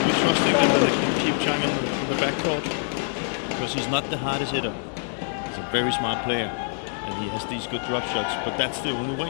be trusting that they can keep Zhang in the backcourt, because he's not the hardest hitter. He's a very smart player, and he has these good drop shots, but that's the only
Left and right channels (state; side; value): silent; right; 62 dB below the other